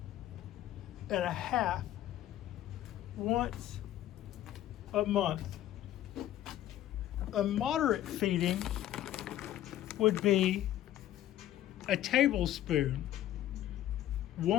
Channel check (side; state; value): right; quieter; 12.9 dB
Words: and a half once a month. A moderate feeding would be a tablespoon